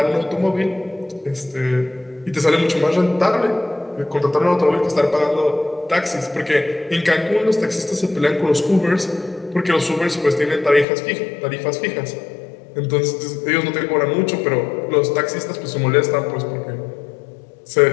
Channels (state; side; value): drops out; right; at 10.9 s